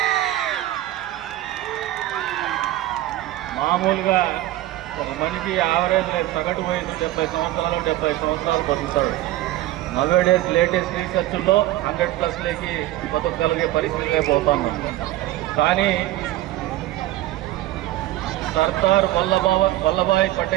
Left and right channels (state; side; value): quieter; left; 15.5 dB